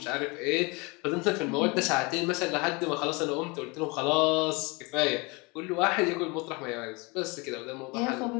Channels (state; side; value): quieter; right; 27.4 dB